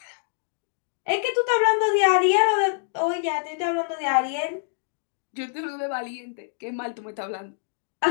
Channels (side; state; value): right; silent; digital silence